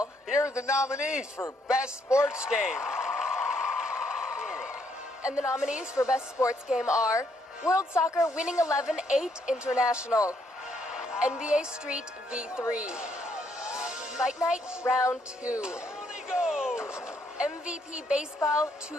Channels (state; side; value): normal; both; correlation 0.72